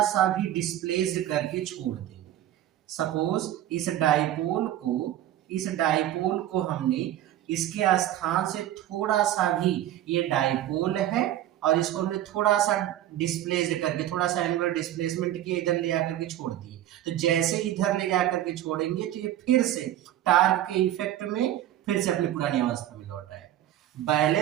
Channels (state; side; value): quieter; left; 12.8 dB